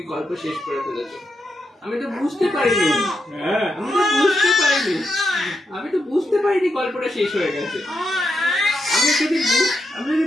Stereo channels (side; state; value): both; normal; correlation 0.84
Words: গল্প শেষ করে ফেলেছো। আমি তো বুঝতে পারিনি। হ্যাঁ আমি তো বুঝতে পারিনি গল্পটা শেষ হয়ে গেছে। আমি যদি